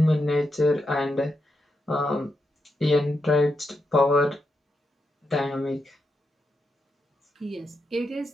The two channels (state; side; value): normal; both; correlation 0.85